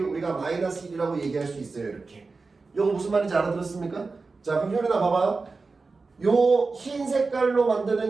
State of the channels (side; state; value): left; quieter; 4.0 dB